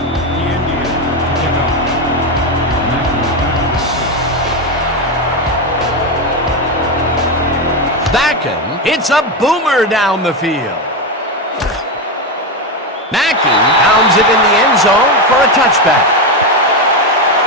It's a boomer down the field. Mackey pounds it in the end zone for a touchback.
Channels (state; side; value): normal; both; correlation 0.12